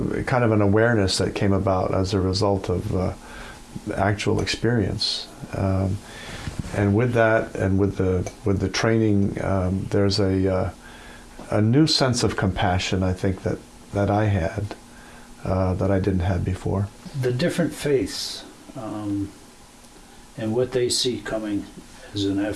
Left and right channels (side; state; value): both; identical; correlation 1.00